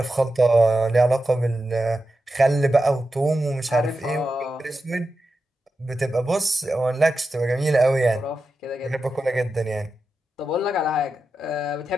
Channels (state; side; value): normal; both; correlation 0.90